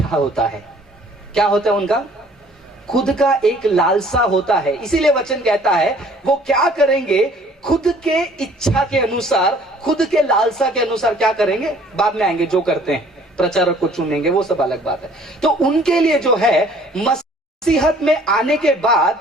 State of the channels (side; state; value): both; normal; correlation 0.55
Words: होता है। क्या होता है? उनका खुद का एक लालसा होता है। इसीलिए वचन कहता है वो क्या करेंगे, खुद के इच्छा के अनुसार, खुद के लालसा के अनुसार क्या करेंगे, बाद में आएंगे। जो करते हैं प्रचारक को चुनेंगे वो सब अलग बात है। तो उनके लिए जो है मसीहत में आने के